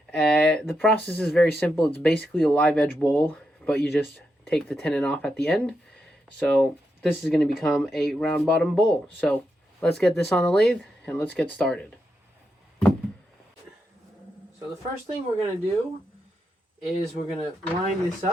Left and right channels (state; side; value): normal; both; correlation 0.84